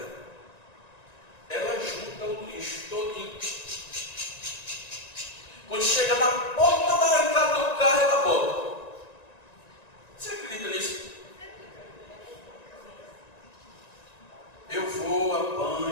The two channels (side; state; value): right; late; 1.9 ms